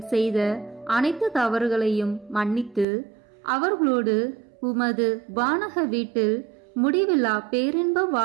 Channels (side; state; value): left; drops out; at 2.9 s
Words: செய்த அனைத்து தவறுகளையும் மன்னித்து அவர்களோடு உமது வானக வீட்டில் முடிவில்லா பேரின்ப